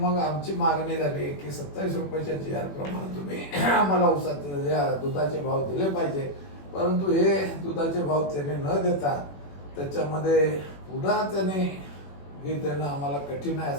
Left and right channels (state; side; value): late; right; 21 ms